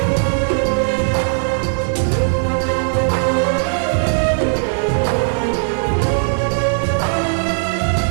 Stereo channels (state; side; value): silent; left; digital silence